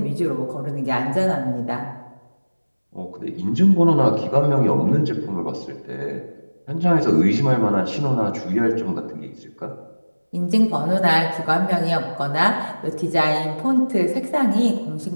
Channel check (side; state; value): both; inverted; correlation -1.00